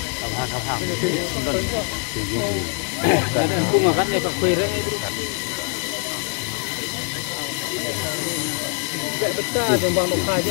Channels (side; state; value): right; quieter; 39.7 dB